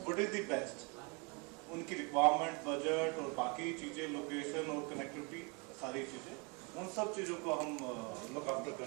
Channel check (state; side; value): quieter; left; 31.9 dB